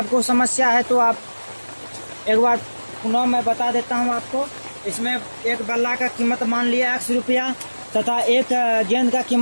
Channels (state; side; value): inverted; both; correlation -1.00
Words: समस्या है तो आप एक बार पुनः मैं बता देता हूँ आपको। इसमें एक बल्ला का कीमत मान लिया x रुपया तथा एक गेंद का